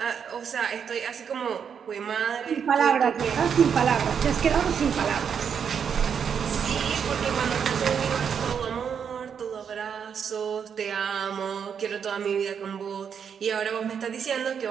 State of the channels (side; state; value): left; quieter; 7.3 dB